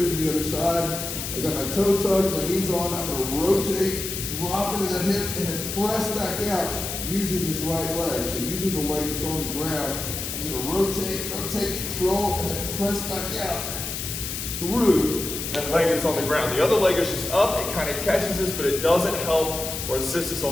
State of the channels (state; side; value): noise; left; hiss, 5 dB below the sound